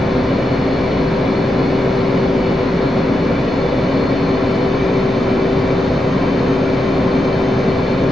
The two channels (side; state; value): both; normal; correlation 0.86